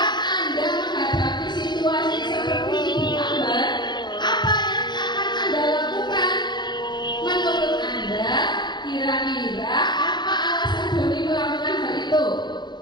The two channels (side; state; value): right; late; 0.21 ms